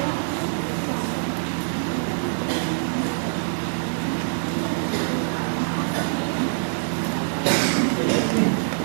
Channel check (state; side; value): silent; left; digital silence